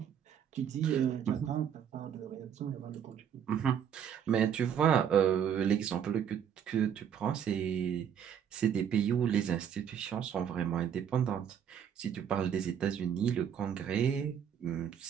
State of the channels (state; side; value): quieter; left; 8.5 dB